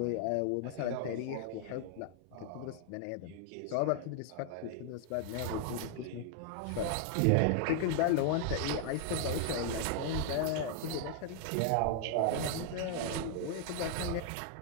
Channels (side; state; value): both; different; correlation 0.00